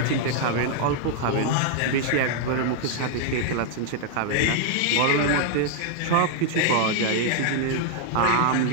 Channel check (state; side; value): different; both; correlation 0.00